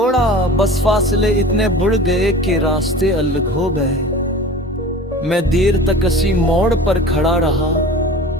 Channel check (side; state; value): both; normal; correlation 0.39